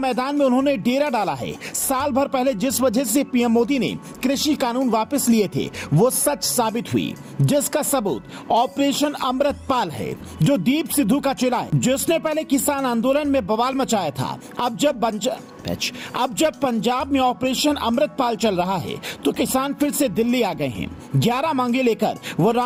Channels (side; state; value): both; identical; correlation 1.00